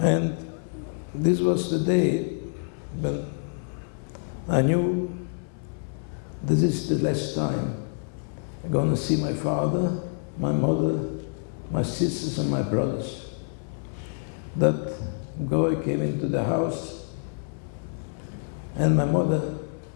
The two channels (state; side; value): silent; right; 60 dB below the other